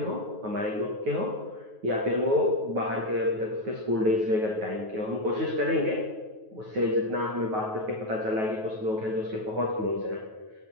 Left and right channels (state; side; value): late; left; 9.3 ms